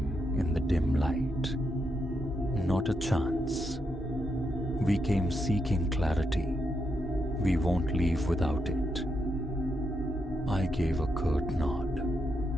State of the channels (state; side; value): normal; both; correlation 0.82